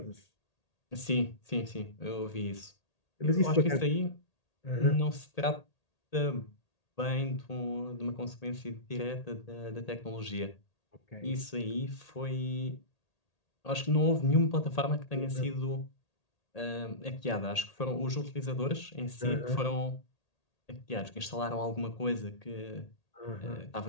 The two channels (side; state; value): right; late; 1.8 ms